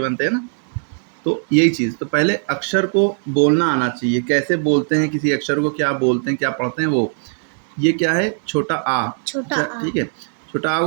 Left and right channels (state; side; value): silent; left; digital silence